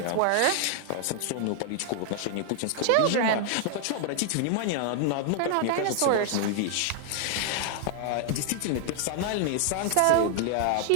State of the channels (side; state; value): both; different; correlation 0.00